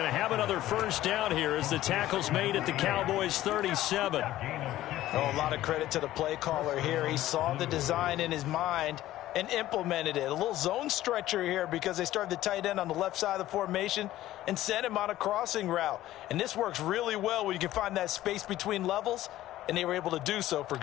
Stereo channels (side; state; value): right; quieter; 14.6 dB